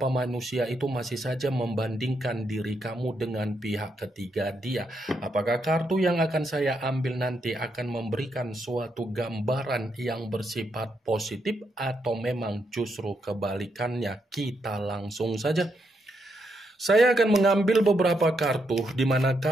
manusia itu masih saja membandingkan diri kamu dengan pihak ketiga dia? Apakah kartu yang akan saya ambil nanti akan memberikan suatu gambaran yang bersifat positif atau memang justru kebalikannya? Kita langsung saja. Saya akan mengambil beberapa kartu, di mana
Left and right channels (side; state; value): both; normal; correlation 0.79